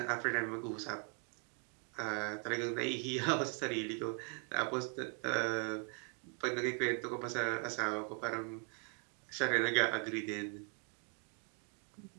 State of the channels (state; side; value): quieter; left; 37.6 dB